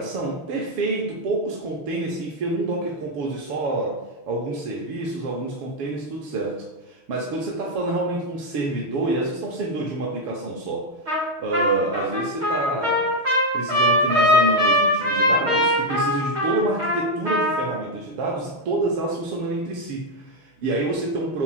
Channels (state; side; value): late; left; 6.5 ms